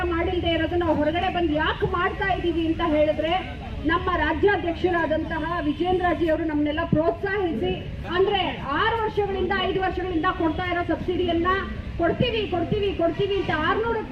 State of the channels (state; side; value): identical; both; correlation 1.00